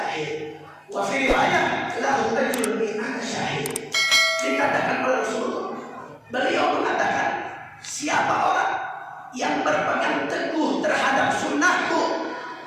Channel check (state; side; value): identical; both; correlation 1.00